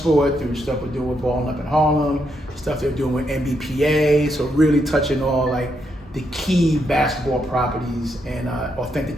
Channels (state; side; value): normal; both; correlation 0.79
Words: through stuff we're doing with Balling Up in Harlem, stuff they're doing with NBPA, so really touching all like the key basketball properties and